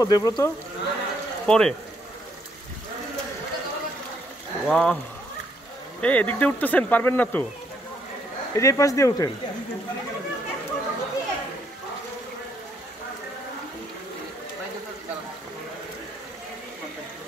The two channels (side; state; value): both; normal; correlation 0.71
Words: দেব্রত পরে? ওয়াও, এই এদিক দিয়ে উঠতেছেন, পারবেন না তো? এই যে এই পাশ দিয়ে উঠেন।